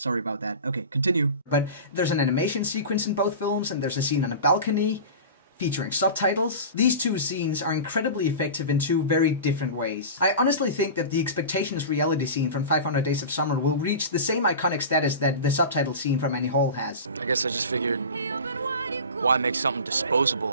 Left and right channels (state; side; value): inverted; both; correlation -0.32